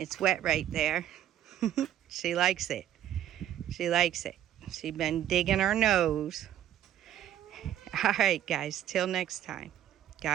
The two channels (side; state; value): left; quieter; 11.5 dB